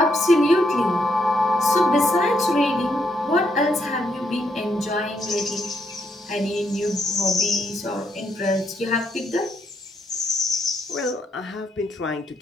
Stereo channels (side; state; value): both; normal; correlation 0.76